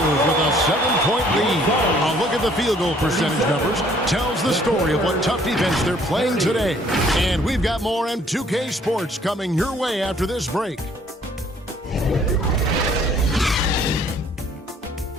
with a 7-point lead. A look at the field goal percentage numbers tells the story of what tough defense they're playing today. And we've got more M2K Sports coming your way after this break.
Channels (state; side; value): normal; both; correlation 0.60